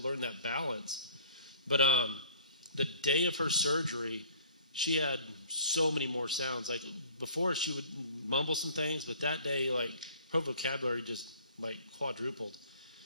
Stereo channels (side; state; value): both; inverted; correlation -0.51